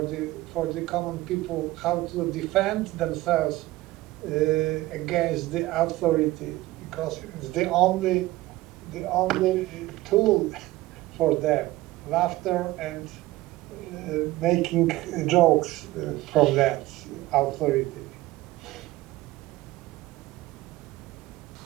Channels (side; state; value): left; quieter; 18.0 dB